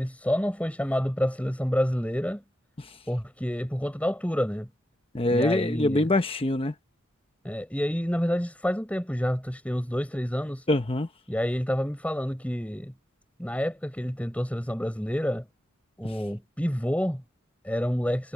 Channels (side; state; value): both; normal; correlation 0.87